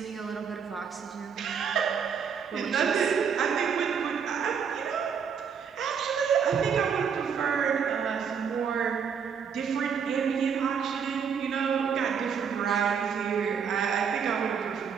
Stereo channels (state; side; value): quieter; left; 6.9 dB